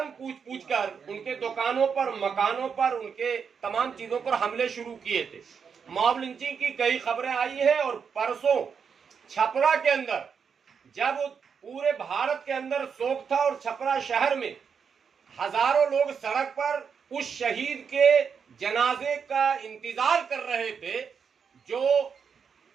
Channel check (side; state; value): left; quieter; 6.5 dB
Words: पूछ कर उनके दुकानों पर, मकानों पर, उनके तमाम चीजों पर हमले शुरू किए थे। मॉब लिंचिंग की कई खबरें आई है और परसों छपरा के अंदर जब पूरे भारत के अंदर शोक था और छपरा शहर में हजारों लोग सड़क पर उस शहीद के जनाजे का इंतजार कर रहे थे, जो